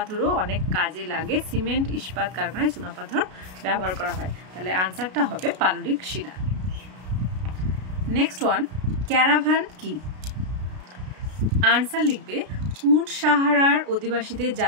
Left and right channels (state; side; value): late; left; 33 ms